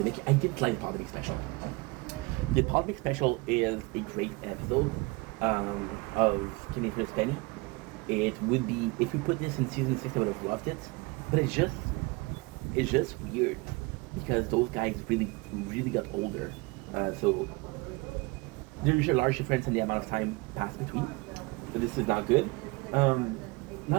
I didn't like the Polymic special. The Polymic special is a great episode of Kenny vs. Penny. It would be, if we put this in season 6, I would have loved it. But it's just weird because those guys really got older. So there's a large difference in the amount of time passed between. So this is not good.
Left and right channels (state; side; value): quieter; left; 25.6 dB